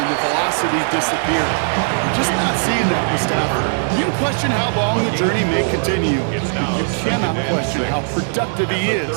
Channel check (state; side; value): silent; left; digital silence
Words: and the velocity disappear. We're just not seeing that with Stafford. You can question how long the journey may continue, but you cannot question how productive he